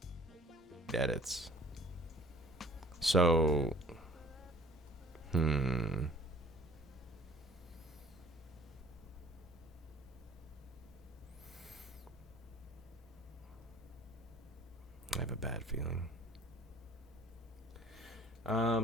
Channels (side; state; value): both; normal; correlation 0.52